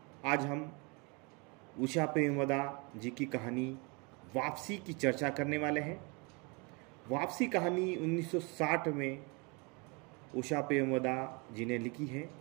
आज हम उषा प्रेमवदा जी की कहानी वापसी की चर्चा करने वाले हैं। वापसी कहानी 1960 में उषा प्रेमवदा जी ने लिखी है।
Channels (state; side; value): quieter; left; 30.4 dB